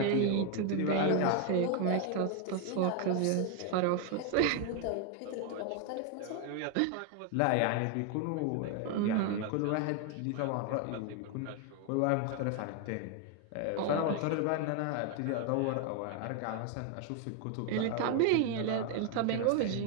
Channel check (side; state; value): both; different; correlation 0.01